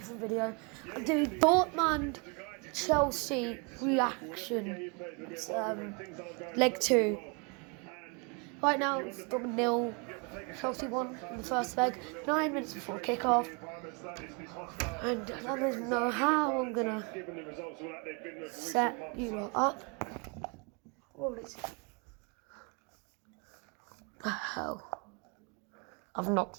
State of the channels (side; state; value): left; quieter; 32.6 dB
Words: video. I'm doing Dortmund Chelsea reaction. It's leg 2. Right now it's Dortmund 0, Chelsea 1 in the first leg, 9 minutes before kickoff. And I don't even know how I'm gonna set you lot up. What is the hell? I've knocked